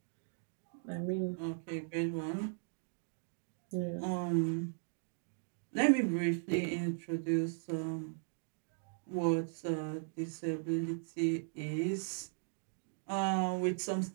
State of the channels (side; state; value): left; silent; digital silence